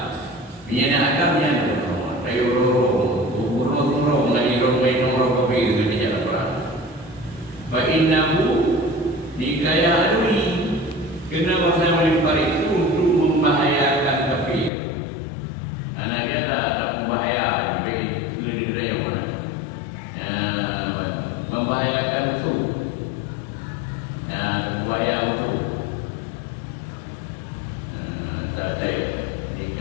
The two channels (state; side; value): drops out; right; at 14.7 s